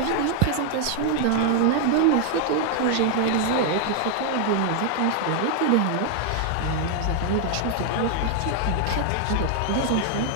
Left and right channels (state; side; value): different; both; correlation 0.00